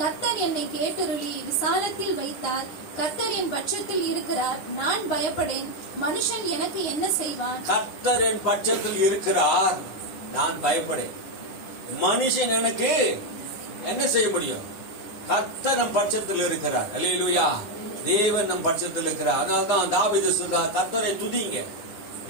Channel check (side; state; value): right; late; 9.6 ms